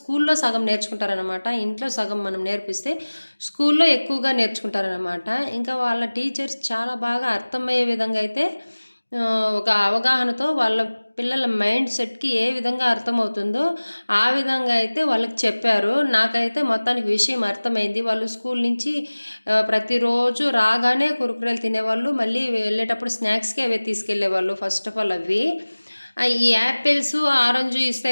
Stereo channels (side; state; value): both; inverted; correlation -1.00